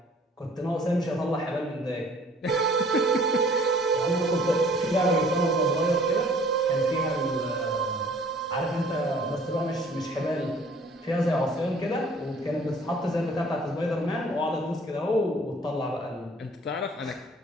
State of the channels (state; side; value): normal; both; correlation 0.54